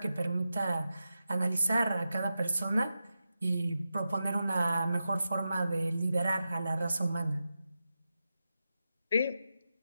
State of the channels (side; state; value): both; inverted; correlation -0.90